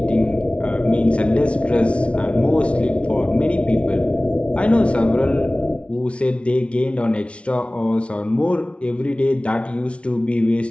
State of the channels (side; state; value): right; late; 0.061 ms